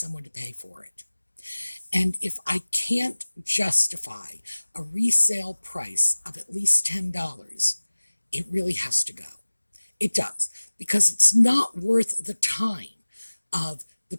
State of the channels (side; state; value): both; inverted; correlation -1.00